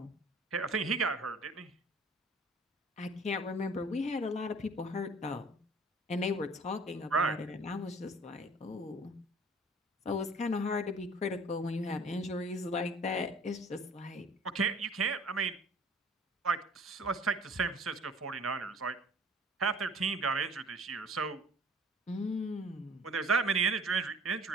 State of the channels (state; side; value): normal; both; correlation 0.49